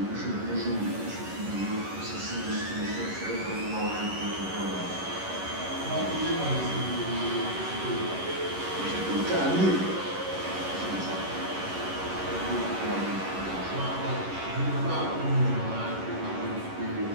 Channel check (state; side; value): late; left; 11 ms